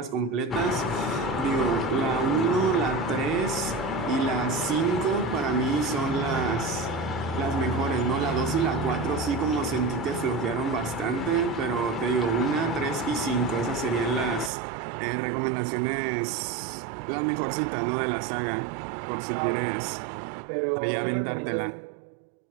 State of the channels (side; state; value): left; drops out; at 14.5 s